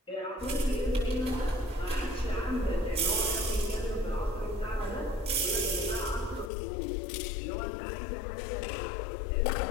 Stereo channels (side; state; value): right; drops out; at 6.5 s